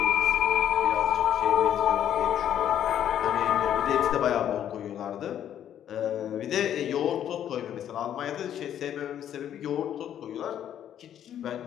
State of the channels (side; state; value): right; quieter; 10.3 dB